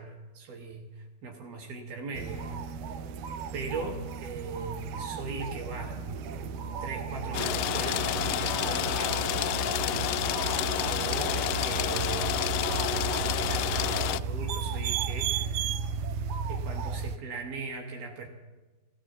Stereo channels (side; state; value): left; late; 11 ms